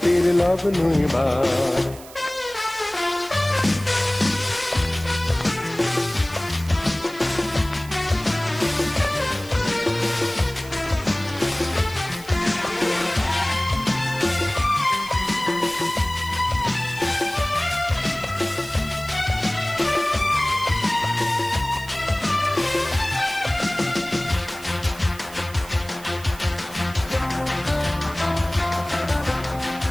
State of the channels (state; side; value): noise; right; hiss, 18 dB below the sound